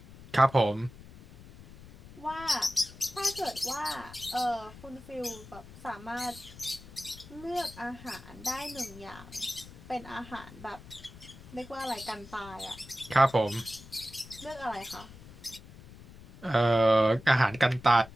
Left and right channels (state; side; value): noise; left; rumble, 18 dB below the sound